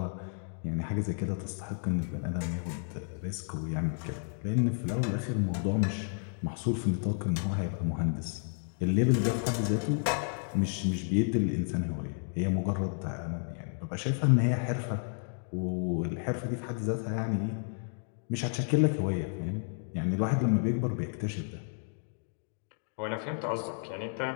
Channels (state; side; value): silent; right; 57 dB below the other